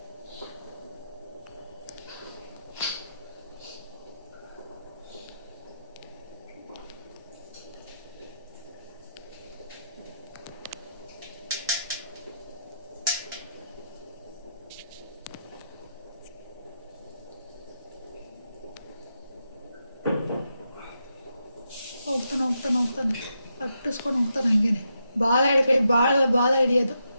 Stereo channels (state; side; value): inverted; both; correlation -0.83